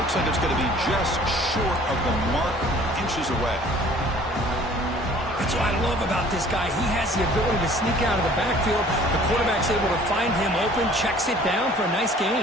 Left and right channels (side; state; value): both; normal; correlation 0.52